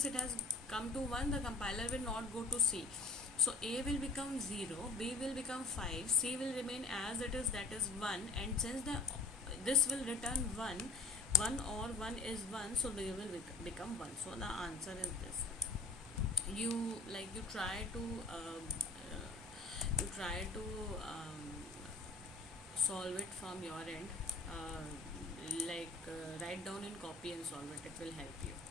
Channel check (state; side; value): quieter; right; 3.5 dB